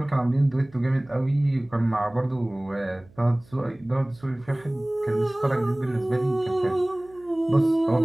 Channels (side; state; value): right; noise; hum, 27 dB below the sound